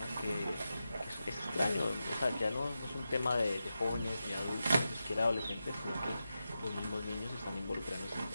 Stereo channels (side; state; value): both; inverted; correlation -0.90